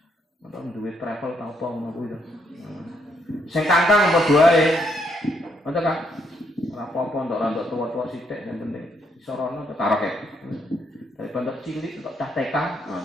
nonton duit travel ta apa ngono kuwi. Sing kangkang apa doae. Ngono kan. Ora apa-apa untuk tua-tua sithik yang penting iso rono karaoke. Daripada cilik untuk TK,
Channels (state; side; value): normal; both; correlation 0.74